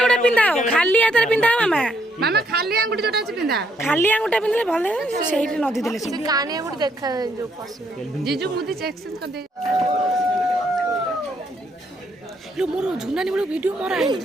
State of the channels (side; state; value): both; normal; correlation 0.72